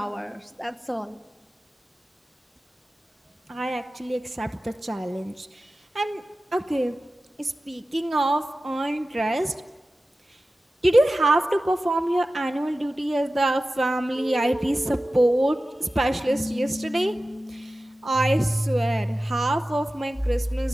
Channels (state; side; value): normal; both; correlation 0.95